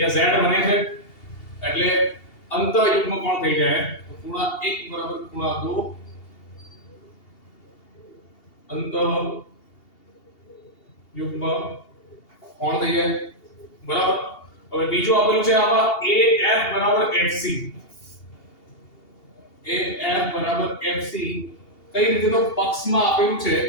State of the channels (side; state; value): right; late; 2.8 ms